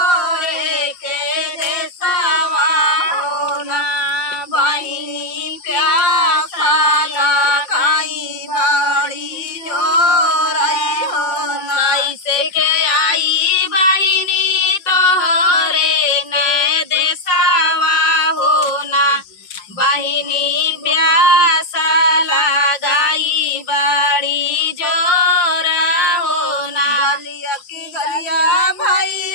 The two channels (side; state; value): right; late; 5.6 ms